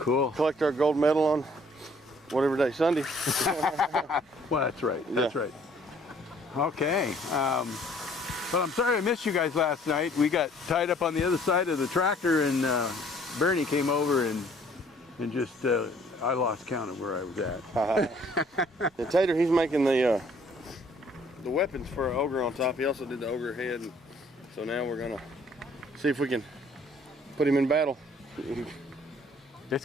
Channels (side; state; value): both; normal; correlation 0.59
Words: Collect our gold medal on whatever day, Sunday. Well, that's right. That's right. Okay. But I'm sorry I missed you guys last night. We got tied up on the other side of the tractor, and Bernie came over and just I lost count of where I was at. The Tater, he's making the weapons for our ogre on top. He also did the ogre head, and so now we're gonna see if we can put him in battle. It's